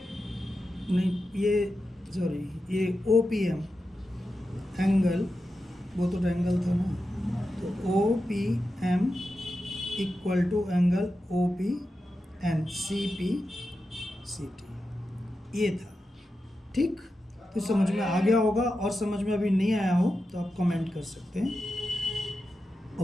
नहीं ये सॉरी ये OPM एंगल, वो तो एंगल था ना, तो OPM equal to angle OPN CPCT, ये था, ठीक। तो समझ में आ गया होगा, और समझ में अभी नहीं आया हो तो आप कमेंट कर सकते हैं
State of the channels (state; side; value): normal; both; correlation 0.90